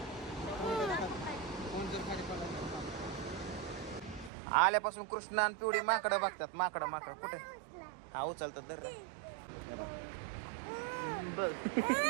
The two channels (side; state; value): left; drops out; at 4.3 s